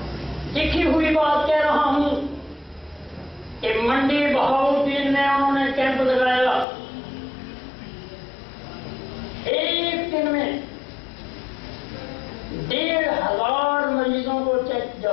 لکھی ہوئی بات کہہ رہا ہوں کہ منڈی بہاؤالدین میں انہوں نے کیمپ لگایا. ایک دن میں 1,500 مریضوں کو چیک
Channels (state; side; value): drops out; right; at 6.7 s